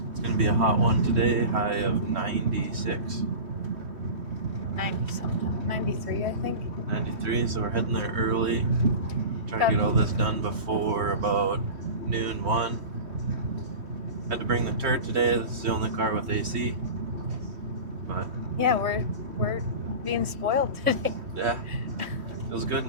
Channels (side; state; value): left; late; 3.1 ms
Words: It's going to be a hot one today, high of 96. 90 something. 93, I think. 93, so we're heading there early. Try to get all this done before about noon, 1. Had to bring the turd today. This is the only car with AC. But yeah, we're being spoiled today. Yeah, feels good